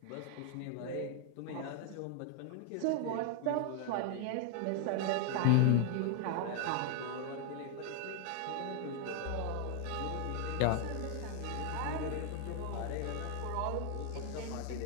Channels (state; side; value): different; both; correlation 0.00